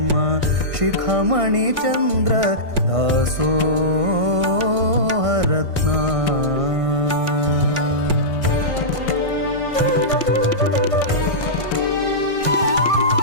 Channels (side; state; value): left; late; 1.5 ms